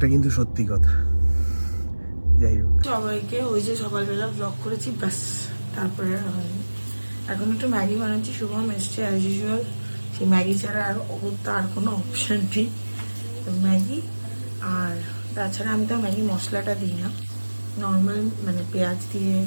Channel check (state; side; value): inverted; both; correlation -1.00